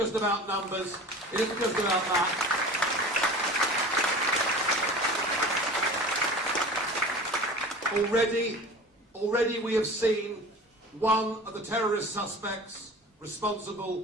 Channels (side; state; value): both; normal; correlation 0.38